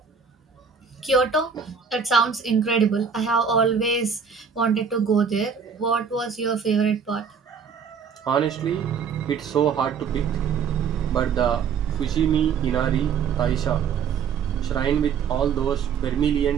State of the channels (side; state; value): left; quieter; 6.5 dB